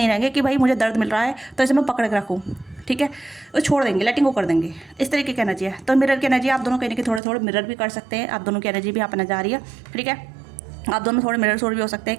रहेंगे कि भाई मुझे दर्द मिल रहा है तो इसे मैं पकड़ के रखूँ, ठीक है, वो छोड़ देंगे, लेटिंग को कर देंगे। इस तरीके की एनर्जी है। तो मिरर की एनर्जी आप दोनों कहीं ना कहीं थोड़े थोड़े मिरर भी कर सकते हैं, आप दोनों की एनर्जी भी यहाँ पर नजर आ रही है, ठीक है। आप दोनों थोड़े मिरर सोर भी हो सकते हैं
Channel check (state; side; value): drops out; left; at 7.2 s